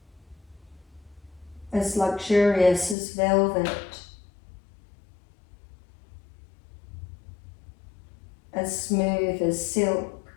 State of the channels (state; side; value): drops out; right; at 3.0 s